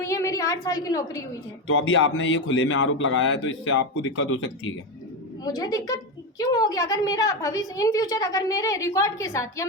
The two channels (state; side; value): normal; both; correlation 0.13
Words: हैं। मेरी 8 साल की नौकरी हुई है। तो अभी आपने ये खुले में आरोप लगाया है, तो इससे आपको दिक्कत हो सकती है क्या? मुझे दिक्कत क्यों होगी? अगर मेरा भविष्य इन फ्यूचर अगर मेरे रिकॉर्ड के साथ या